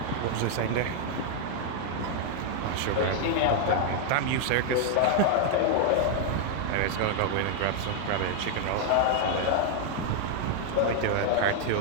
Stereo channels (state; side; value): different; both; correlation 0.00